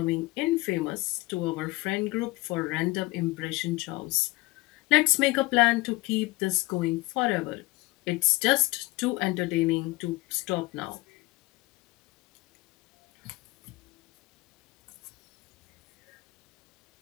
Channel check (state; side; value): quieter; right; 21.9 dB